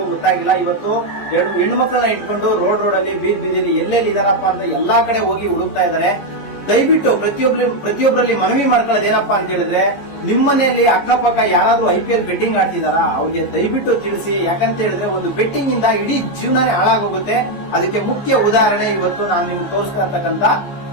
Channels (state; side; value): late; right; 14 ms